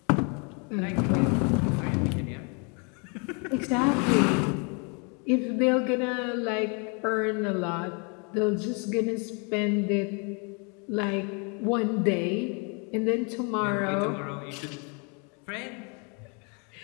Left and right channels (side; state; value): right; quieter; 34.7 dB